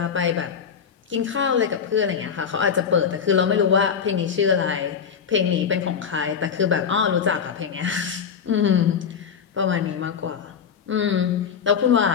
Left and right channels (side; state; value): right; quieter; 7.0 dB